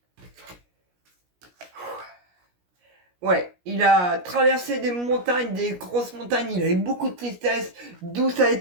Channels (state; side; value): late; left; 17 ms